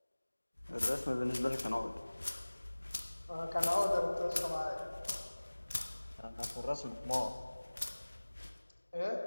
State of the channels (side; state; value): both; inverted; correlation -1.00